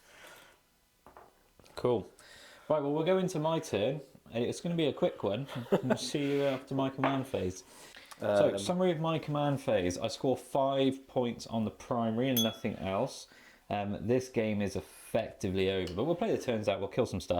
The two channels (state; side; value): identical; both; correlation 1.00